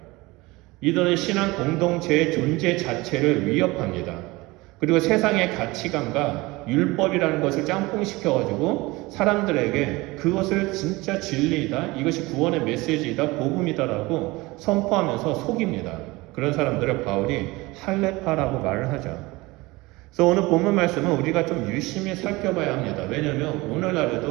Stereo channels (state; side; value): quieter; left; 21.9 dB